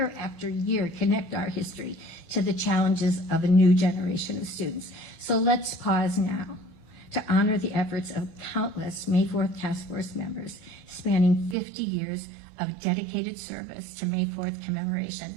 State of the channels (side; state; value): left; drops out; at 11.6 s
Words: after year, connect our history to the challenges of a new generation of students. So let's pause now to honor the efforts of countless May 4th Task Force members spanning 50 years of dedicated service to May 4th